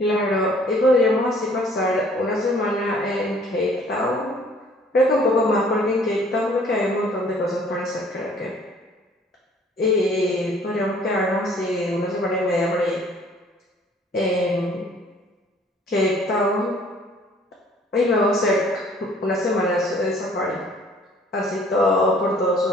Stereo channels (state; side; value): normal; both; correlation 0.57